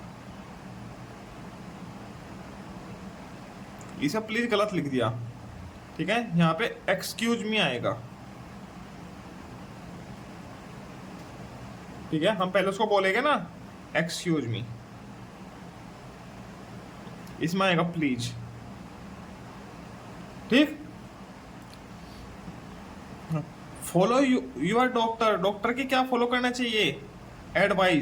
इसे प्लीज गलत लिख दिया। ठीक है, यहां पे एक्सक्यूज मी आएगा। ठीक है, हम पहले उसको बोलेंगे ना एक्सक्यूज मी, इसमें आएगा प्लीज। ठीक, फॉलो यूर डॉक्टर, डॉक्टर की क्या फॉलो करना चाहिए?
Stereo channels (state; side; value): identical; both; correlation 1.00